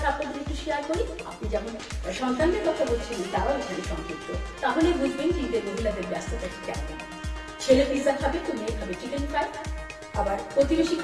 আপনাদের একটু শেয়ার করি। আপনি যেমন সন্তানদের কথা বলছিলেন, তারাও এখানে সংযুক্ত, তাহলে বুঝবেন যে ঈদের মহিলাদের ব্যস্ততা কেমন। ছেলে পিৎজা খাবে তো মেয়ে খাবে চিকেন ফ্রাই, আবার প্রতিবেশী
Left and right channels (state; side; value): identical; both; correlation 1.00